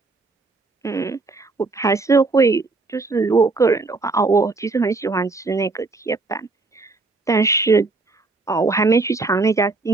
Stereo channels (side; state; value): left; quieter; 3.7 dB